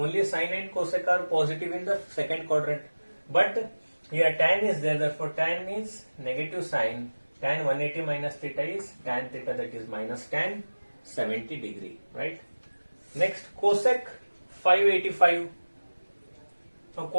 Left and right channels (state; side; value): inverted; both; correlation -1.00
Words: sine and cosec are positive in the second quadrant. But here tan is there, therefore tan is negative sine. Tan 180 minus theta is tan theta, that is minus tan 70 degree, right? Next, cosec 585. Now